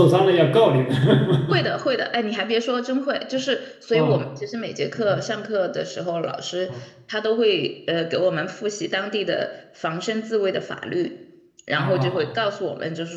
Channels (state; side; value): identical; both; correlation 1.00